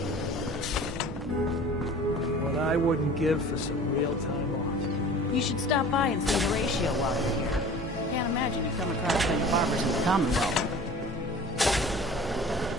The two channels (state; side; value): normal; both; correlation 0.43